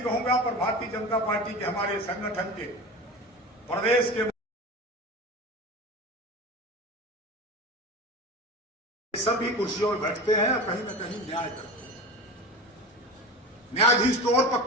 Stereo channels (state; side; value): normal; both; correlation 0.30